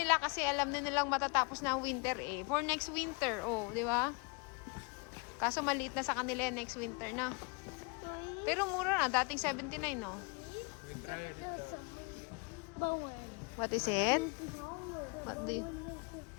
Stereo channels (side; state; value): right; quieter; 32.1 dB